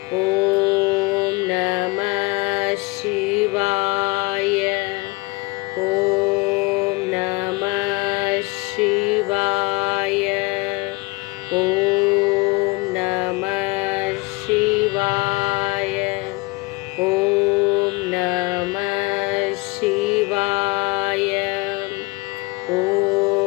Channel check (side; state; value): right; quieter; 24.7 dB